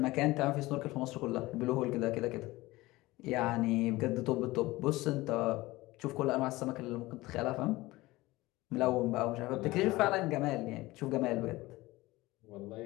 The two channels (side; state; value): right; quieter; 19.5 dB